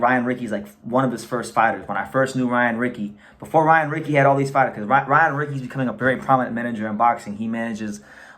Rickey's one of his first fighters. When I first knew Ryan Rickey, before Ryan Rickey had all these fighters, because Ryan Rickey's becoming a very prominent manager in boxing. He manages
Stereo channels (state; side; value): identical; both; correlation 1.00